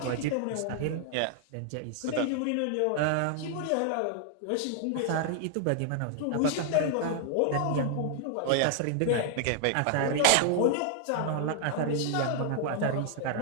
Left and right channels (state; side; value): different; both; correlation 0.00